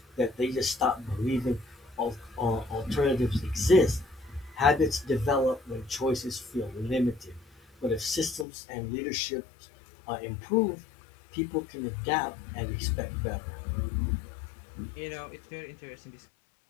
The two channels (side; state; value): right; drops out; at 8.5 s